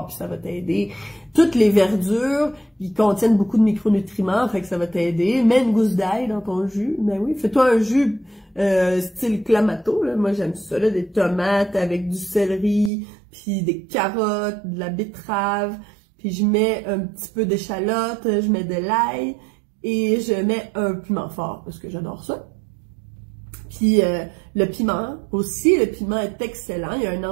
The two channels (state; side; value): drops out; left; at 12.9 s